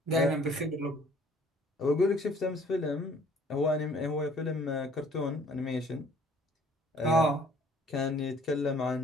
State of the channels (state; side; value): normal; both; correlation 0.57